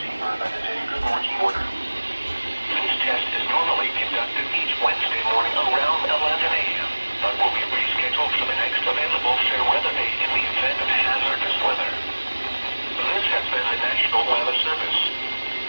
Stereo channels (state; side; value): inverted; both; correlation -1.00